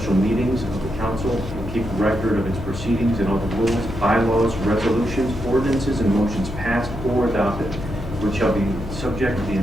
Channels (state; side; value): noise; left; hum, 9 dB below the sound